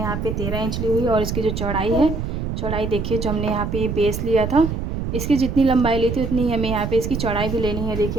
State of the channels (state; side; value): noise; right; rumble, 3 dB below the sound